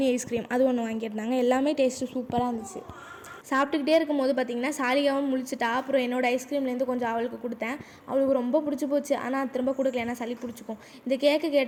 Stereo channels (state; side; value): identical; both; correlation 1.00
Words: ஐஸ்கிரீம் அது ஒன்று வாங்கியிருந்தாங்க. எல்லாமே டேஸ்ட்டு சூப்பராக இருந்துச்சு. சாப்பிட்டுக்கிட்டே இருக்கும்போது பார்த்திங்கன்னா சாலிகாவும் முழிச்சிட்டா. அப்புறம் என்னோடய ஐஸ்கிரீம்லேருந்து கொஞ்சம் அவளுக்கு கொடுத்தேன். அவளுக்கு ரொம்ப பிடிச்சி போச்சு. ஆனால் திரும்ப கொடுக்கல, ஏன்னா சளி பிடிச்சிக்கும். இந்த கேக்கு